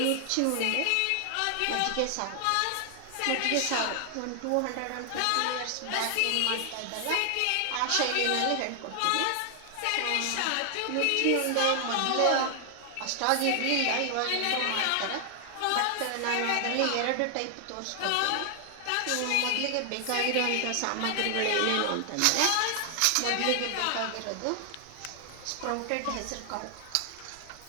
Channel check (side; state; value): both; different; correlation 0.00